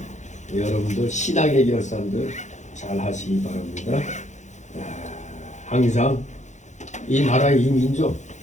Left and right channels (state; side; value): late; right; 0.34 ms